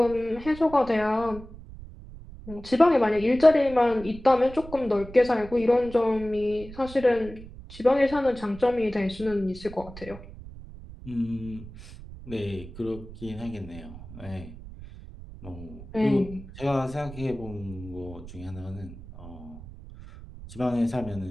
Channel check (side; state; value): right; noise; rumble, 15 dB below the sound